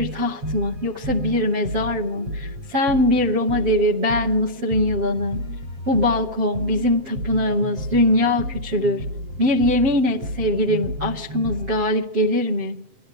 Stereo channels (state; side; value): late; left; 7.7 ms